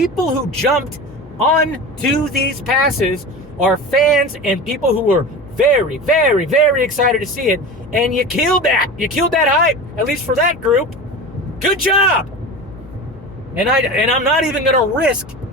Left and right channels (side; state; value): left; noise; hum, 21 dB below the sound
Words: who jumped onto these passes are fans and people who were very, very, very excited to see it. And you killed that. You killed that hype, at least for that group. Good job. And I'm not even going to risk